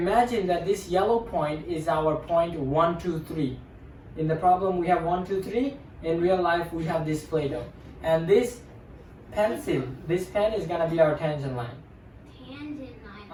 that this yellow point is our point 1, 2, 3. In the problem we have 1, 2, 3. In real life we have this Play-Doh. And this pencil, this pen is gonna be our tangent line. Tangent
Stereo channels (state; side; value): identical; both; correlation 1.00